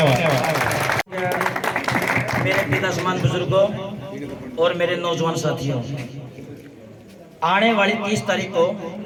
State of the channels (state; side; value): identical; both; correlation 1.00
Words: मेरे पिता समान बुजुर्गों और मेरे नौजवान साथियों, आने वाली 30 तारीख को